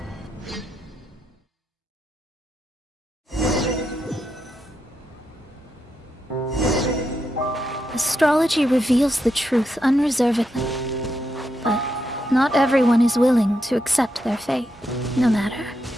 Astrology reveals the truth unreservedly, but not everyone is willing to accept their fate, no matter.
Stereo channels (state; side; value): normal; both; correlation 0.83